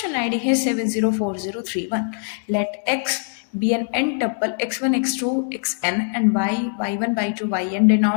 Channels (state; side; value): silent; right; digital silence